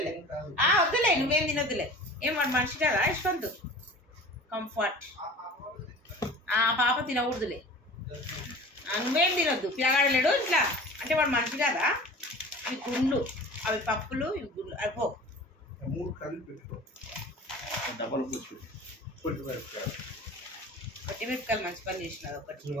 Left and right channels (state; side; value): normal; both; correlation 0.40